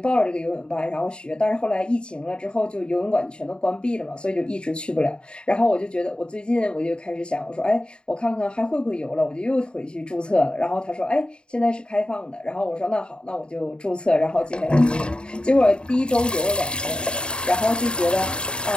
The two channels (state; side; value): late; right; 0.051 ms